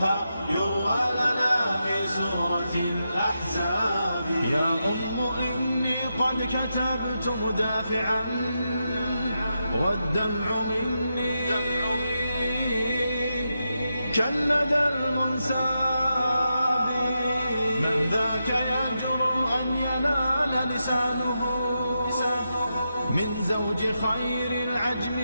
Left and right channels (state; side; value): inverted; both; correlation -0.86